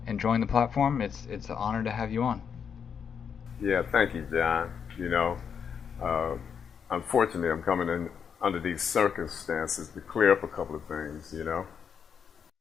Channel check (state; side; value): quieter; right; 7.1 dB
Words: and join the platform. It's an honor to have you on. Yeah, thank you, John. Uh, unfortunately, I'm coming in under these circumstances to clear up a couple of things.